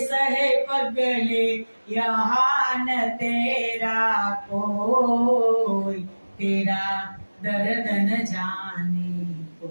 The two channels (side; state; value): both; inverted; correlation -1.00